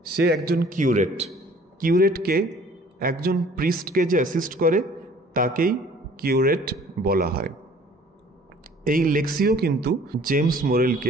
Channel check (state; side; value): normal; both; correlation 0.53